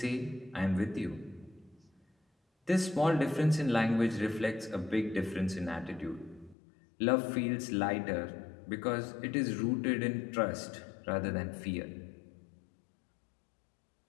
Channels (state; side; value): drops out; right; at 6.6 s